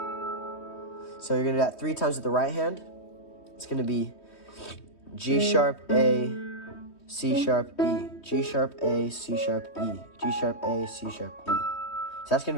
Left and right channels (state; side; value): late; right; 3.2 ms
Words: So you're going to do that 3 times with the right hand. It's going to be G sharp, A, C sharp, E. G sharp, A, C sharp, E. G sharp, A, C sharp, E. So that's going to